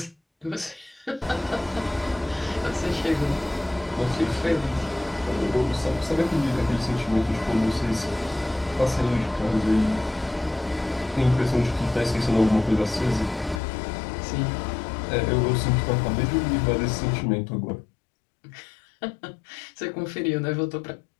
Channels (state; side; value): drops out; right; at 13.6 s